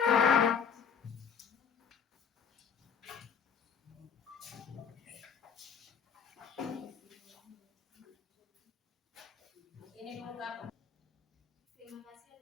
Ini dulu apa? Terima kasih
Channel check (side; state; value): right; quieter; 6.8 dB